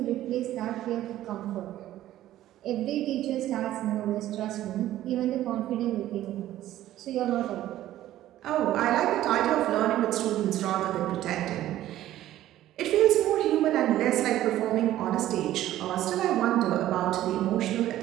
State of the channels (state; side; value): quieter; left; 13.7 dB